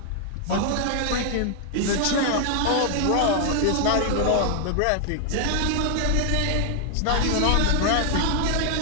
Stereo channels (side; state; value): both; different; correlation 0.00